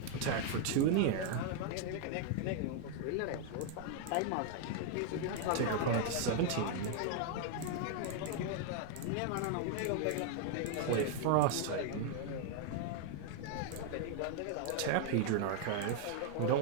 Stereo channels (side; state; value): both; different; correlation 0.00